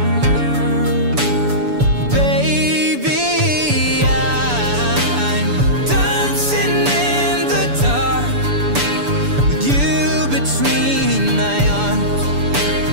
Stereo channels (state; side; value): late; left; 6.9 ms